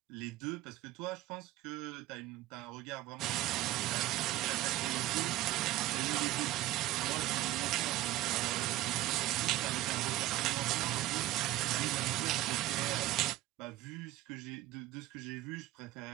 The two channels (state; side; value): quieter; left; 15.9 dB